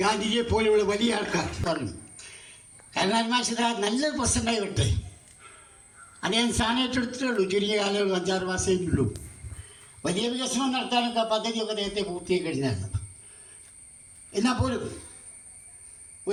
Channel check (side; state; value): both; identical; correlation 1.00